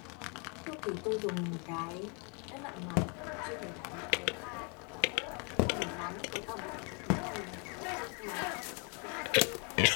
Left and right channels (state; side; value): quieter; right; 35.7 dB